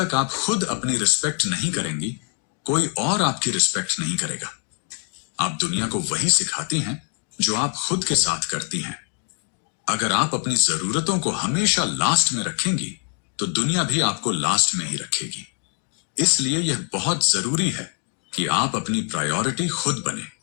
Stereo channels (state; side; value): quieter; right; 39.3 dB